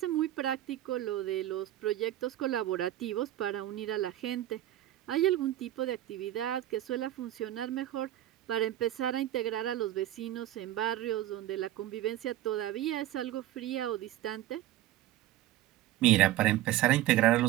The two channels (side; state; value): left; quieter; 13.9 dB